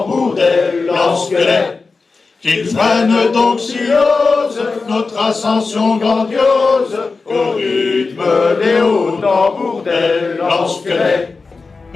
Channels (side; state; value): right; quieter; 4.2 dB